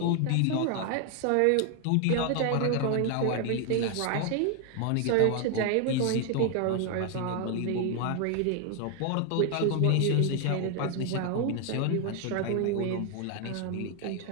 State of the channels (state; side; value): different; both; correlation 0.00